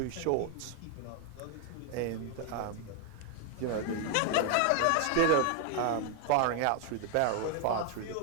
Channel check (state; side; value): different; both; correlation 0.00